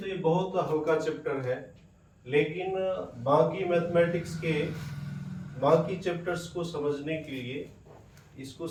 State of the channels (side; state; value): both; identical; correlation 1.00